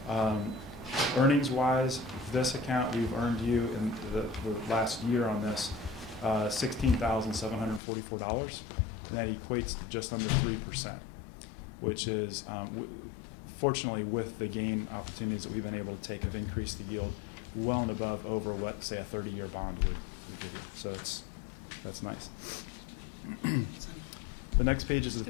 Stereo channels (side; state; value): right; drops out; at 7.8 s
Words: Earnings-wise, this account, we've earned you in the last year on this $16,744, and that equates to just under 3%, which is, fortunately, with the gain opportunities that we've been able to take, have increased the yield well and above over what, say, a 30-year bond would give you. So that's nice. The next page is the